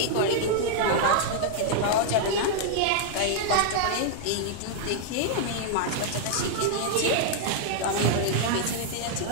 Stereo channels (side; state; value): both; different; correlation -0.01